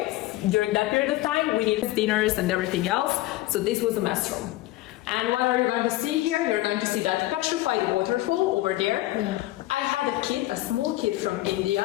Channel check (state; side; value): quieter; right; 17.2 dB